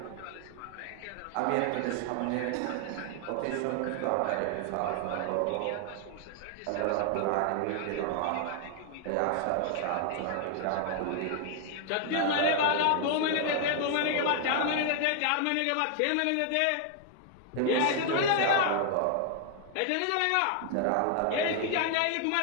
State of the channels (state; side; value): different; both; correlation 0.00